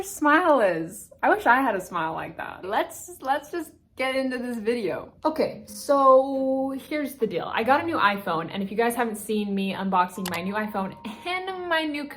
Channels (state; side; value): identical; both; correlation 1.00